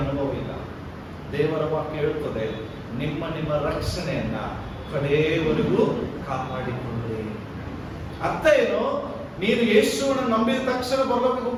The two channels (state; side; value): identical; both; correlation 1.00